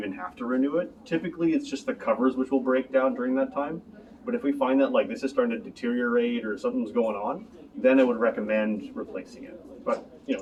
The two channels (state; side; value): identical; both; correlation 1.00